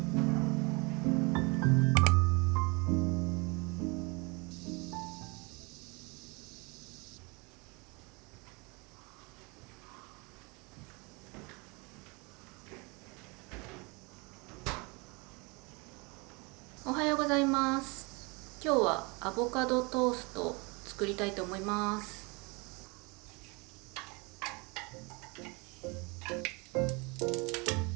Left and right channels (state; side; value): quieter; left; 28.7 dB